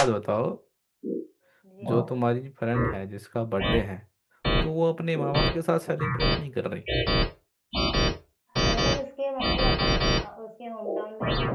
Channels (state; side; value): identical; both; correlation 1.00